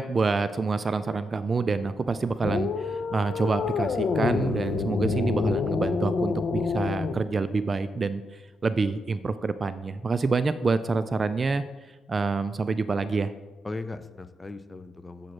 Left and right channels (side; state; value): both; normal; correlation 0.84